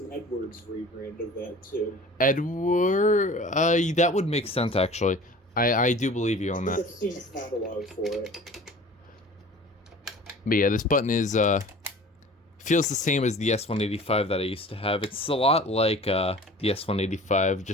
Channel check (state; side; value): normal; both; correlation 0.43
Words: Edwards rebrand of that too. Edward, that would make sense actually. I do believe you on that. I've seen a catalog for it. But yeah, this button is feels the same as the S185 that I used to have. It's a lot like the S185,